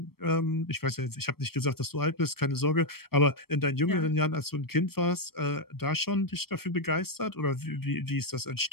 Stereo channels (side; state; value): right; late; 0.94 ms